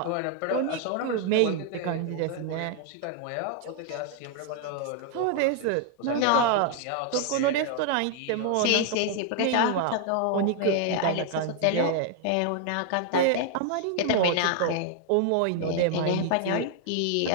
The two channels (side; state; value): both; different; correlation 0.00